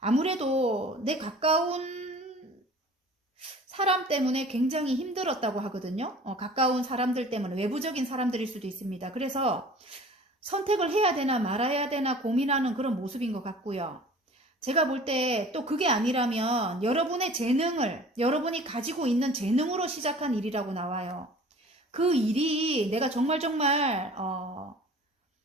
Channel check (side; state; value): both; normal; correlation 0.45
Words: 내 가까운 사람 때문에 굉장히 힘들었다고 하거든요. 가까운 사람들 때문에, 외부적인 사람들일 수도 있습니다. 그래서 선택을 해야 되나 말아야 되나 고민하는 그런 모습인 것 같고요. 제가 볼 때 또 그게 아니라면 여러분의 재능을, 여러분이 가지고 있는 재능으로 시작한 일이라고 나와요. 그 일이 내가 정말